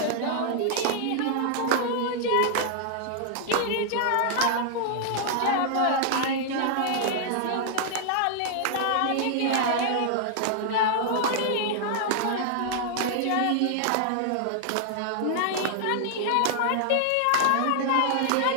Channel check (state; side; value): different; both; correlation -0.01